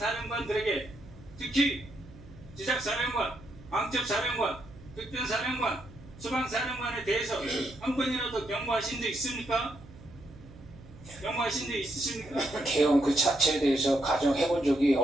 특히 지작사령관, 방첩사령관, 특전사령관, 수방사령관에 대해서 한 번이라도 경고하신 적 있습니까? 경고하신 적 있으십니까? 개헌 그 자체에 대해서 가정해본 적이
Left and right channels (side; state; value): right; noise; hum, 20 dB below the sound